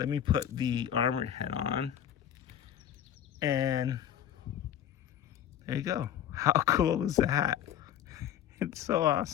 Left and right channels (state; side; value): quieter; right; 10.3 dB